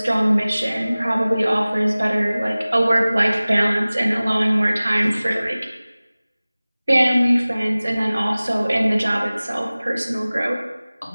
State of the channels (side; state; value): both; inverted; correlation -0.99